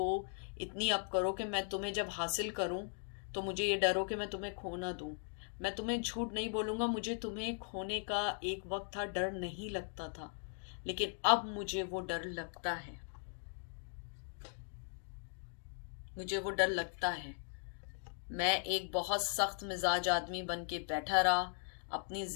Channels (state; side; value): silent; right; 52 dB below the other